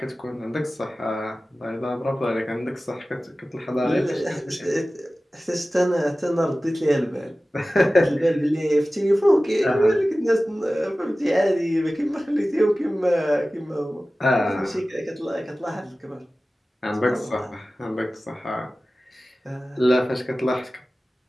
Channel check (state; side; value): normal; both; correlation 0.96